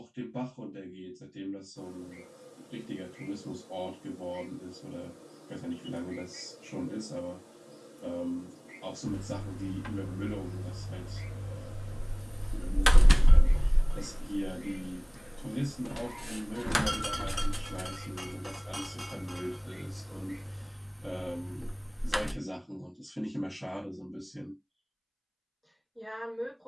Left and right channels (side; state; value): both; identical; correlation 1.00